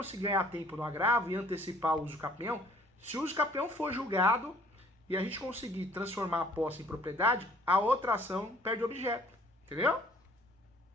ganhar tempo no agravo e antecipar o usucapião, se o usucapião for julgado e a gente conseguir transformar a posse em propriedade, a outra ação perde o objeto, entendeu?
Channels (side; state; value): both; normal; correlation 0.57